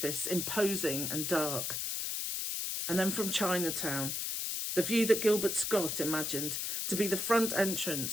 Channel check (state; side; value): noise; left; hiss, 2 dB below the sound